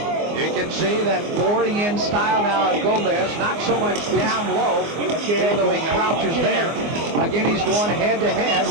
You can see that boring in style now of Gomez, not so much down low, even though he crouches there. Again, he's going head-to-head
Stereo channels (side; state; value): left; late; 24 ms